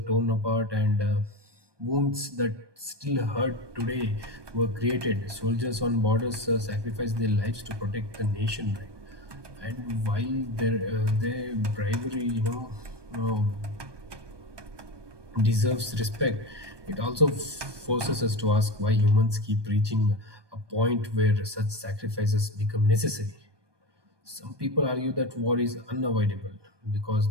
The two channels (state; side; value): late; left; 1.2 ms